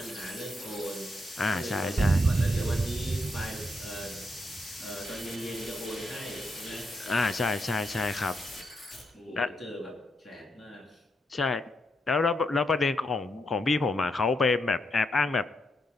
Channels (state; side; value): normal; both; correlation 0.81